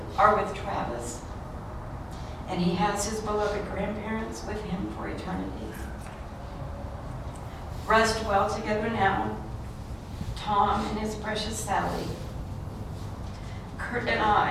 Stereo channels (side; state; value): both; identical; correlation 1.00